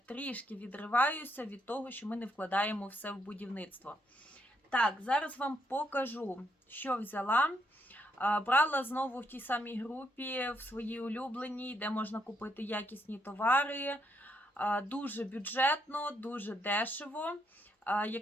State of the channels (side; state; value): both; normal; correlation 0.76